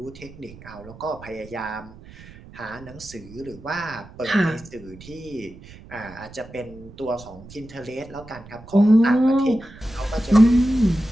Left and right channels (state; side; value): noise; right; rumble, 19 dB below the sound